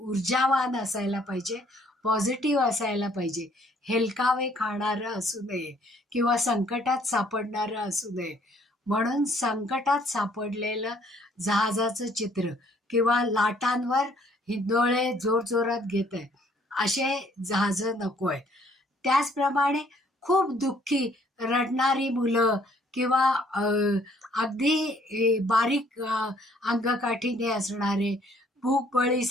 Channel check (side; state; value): both; normal; correlation 0.62